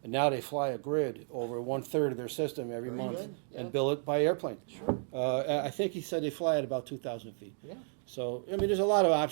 And now they fly a grid over 1/3 of their system every Very month good, yeah. and bill it by airplane. Sure. I think he said they fly at about 2,000 feet. Yeah. So, I mean, there's a lot of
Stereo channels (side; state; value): left; silent; 56 dB below the other